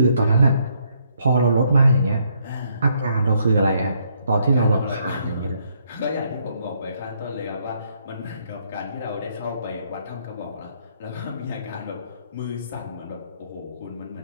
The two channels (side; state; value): both; inverted; correlation -0.71